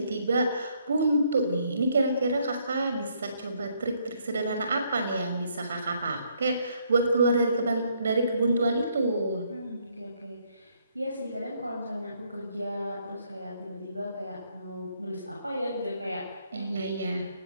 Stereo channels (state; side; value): inverted; both; correlation -0.70